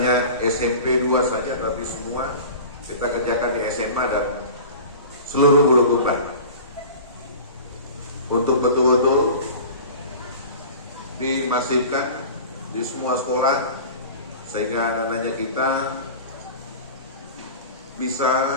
SMP 2 saja, tapi semua kita kerjakan di SMA dan seluruh Bulukumba untuk betul-betul dimasifkan di semua sekolah sehingga anak-anaknya kita bisa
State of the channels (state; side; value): inverted; both; correlation -0.37